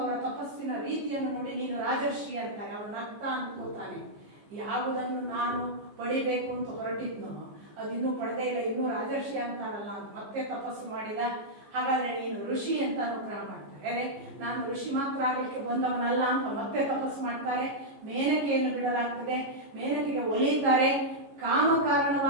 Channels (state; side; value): late; left; 14 ms